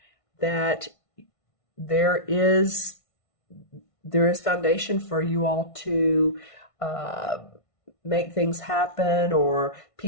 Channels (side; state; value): right; late; 1.5 ms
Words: that there is foundation for you all to make things happen, or